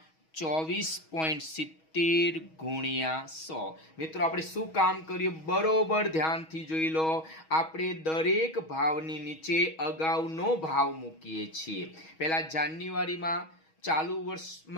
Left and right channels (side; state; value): right; late; 6.3 ms